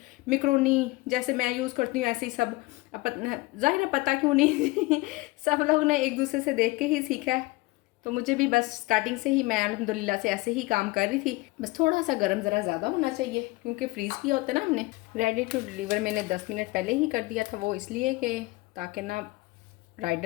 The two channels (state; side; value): quieter; right; 21.7 dB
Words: मैक्रोनी जैसे मैं यूज़ करती हूँ ऐसे ही सब। ज़ाहिर है पता क्यों नहीं सब लोग ने एक दूसरे से देख के ही सीखा है, तो मुझे भी बस स्टार्टिंग से ही मैं अल्हम्दुलिल्लाह से ऐसे ही काम कर रही थी। बस थोड़ा सा गर्म ज़रा ज़्यादा होना चाहिए क्योंकि फ्रीज़ किया होता है ना हमने। रेडी टू डिलीवर मैंने 10 मिनट पहले ही कर दिया था, वो इसलिए कि ताकि ना